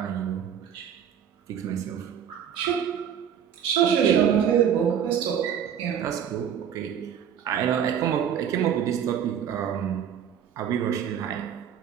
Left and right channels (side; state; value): left; quieter; 8.7 dB